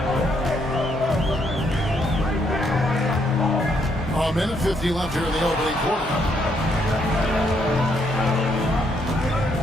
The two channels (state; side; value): normal; both; correlation 0.73